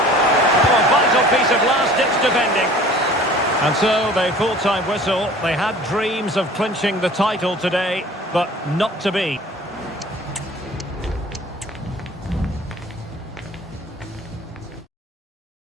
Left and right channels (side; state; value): both; normal; correlation 0.47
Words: Oh, a vital piece of last-ditch defending. And so, the full-time whistle. They had dreams of clinching the title today, but not to be.